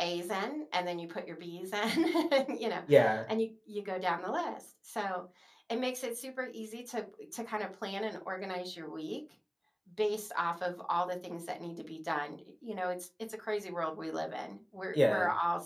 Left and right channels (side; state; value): both; identical; correlation 1.00